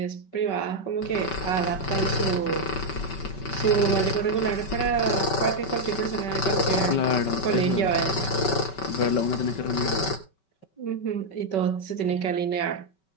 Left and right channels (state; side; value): late; right; 5.3 ms